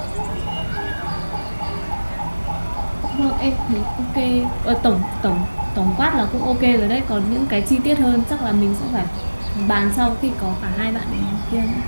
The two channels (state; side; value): inverted; both; correlation -1.00